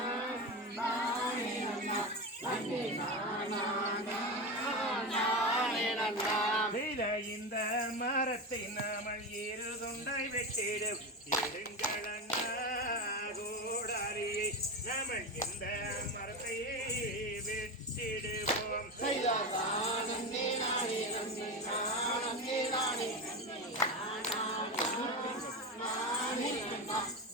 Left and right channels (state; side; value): normal; both; correlation 0.19